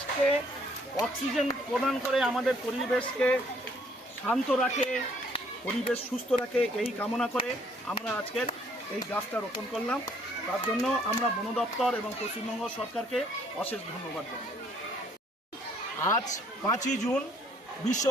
অক্সিজেন প্রদান করে আমাদের পরিবেশকে শান্ত রাখে, পরিবেশ সুস্থ রাখে, এই কামনা করে আমরা আজকের এই গাছটা রোপণ করলাম। তার জন্য আমরা বন দপ্তর এবং পশ্চিমবঙ্গ সরকারকে অশেষ ধন্যবাদ জানাই। আজ 5ই জুন বিশ্ব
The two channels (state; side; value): normal; both; correlation 0.63